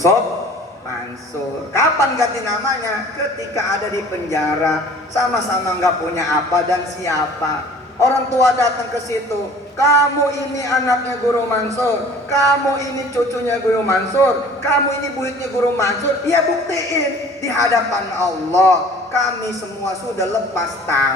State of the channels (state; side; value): normal; both; correlation 0.48